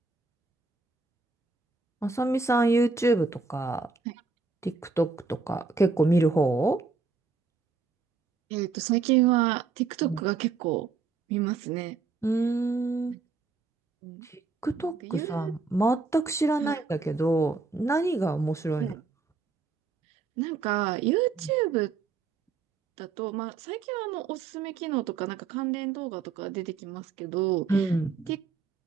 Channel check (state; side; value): quieter; left; 4.5 dB